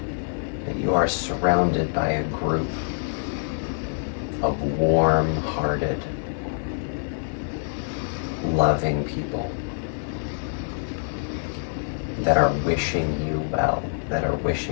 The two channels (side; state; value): right; silent; digital silence